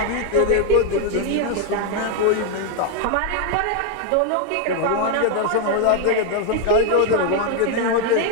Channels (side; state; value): both; different; correlation 0.01